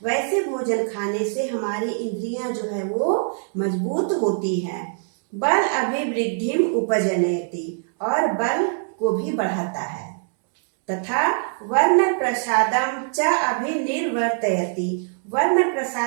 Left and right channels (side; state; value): left; silent; digital silence